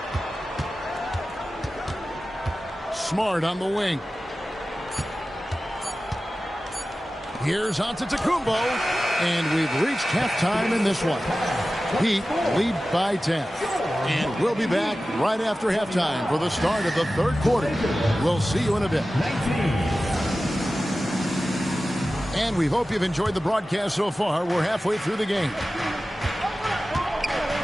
Smart on the wing. Here's Antetokounmpo, and we've reached halftime in this one. Heat lead by 10. And we'll be back right after halftime for the start of the third quarter. We'll see you in a bit. And we hope you've enjoyed the broadcast so far. We're halfway through the game.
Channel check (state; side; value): normal; both; correlation 0.95